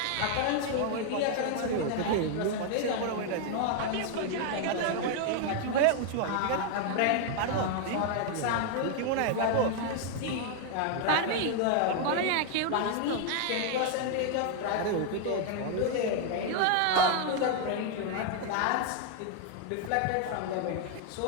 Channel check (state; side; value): different; both; correlation 0.00